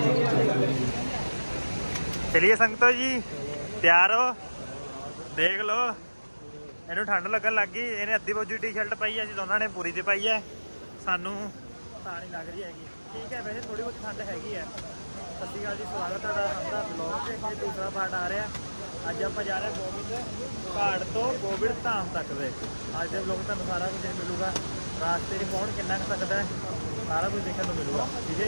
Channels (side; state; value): both; inverted; correlation -1.00